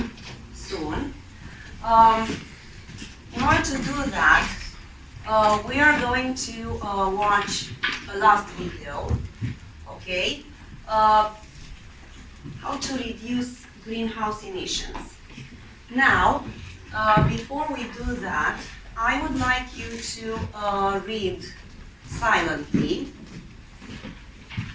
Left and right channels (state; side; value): identical; both; correlation 1.00